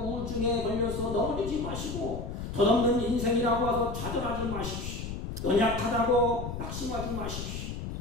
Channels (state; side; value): noise; left; rumble, 6 dB below the sound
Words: 우울증에 걸려서 넘어지지 마시고, 덧없는 인생이라고 해서 좌절하지 마십시오. 연약하다고 낙심하지 마십시오.